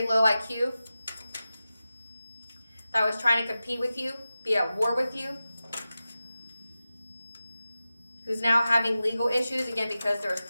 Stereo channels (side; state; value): both; inverted; correlation -0.94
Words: low IQ. That was trying to compete with you, be at war with you. Who's now having legal issues, again, because there was